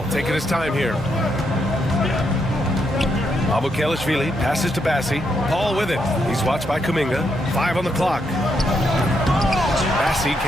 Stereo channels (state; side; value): normal; both; correlation 0.79